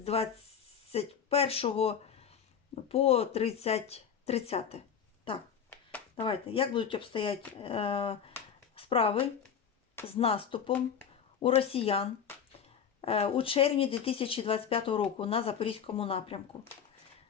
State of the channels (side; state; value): right; quieter; 7.5 dB